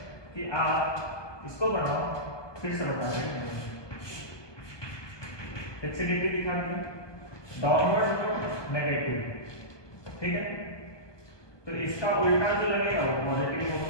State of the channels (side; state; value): right; late; 1.2 ms